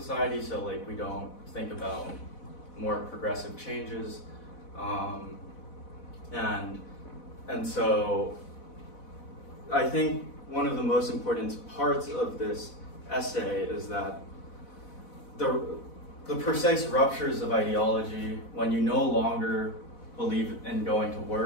so like we don't think about more progressive changes, and so I think one of the most important parts of this essay is that the precise ruptures of ideology, when you no longer believe in going to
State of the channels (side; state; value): right; late; 4.1 ms